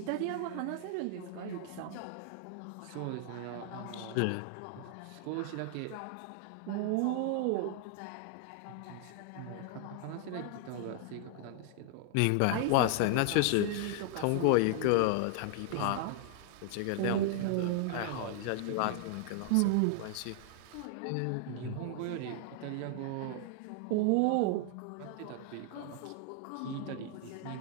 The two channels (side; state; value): both; different; correlation 0.00